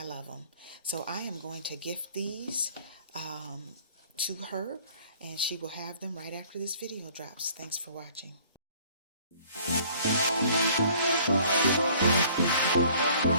love them. So I am going to gift these to her, and she will have them right after this video drops. Thanks for watching.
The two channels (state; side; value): inverted; both; correlation -0.54